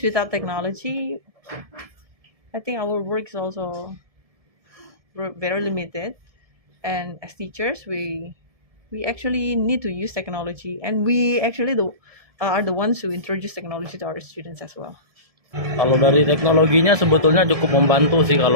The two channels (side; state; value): left; late; 1.7 ms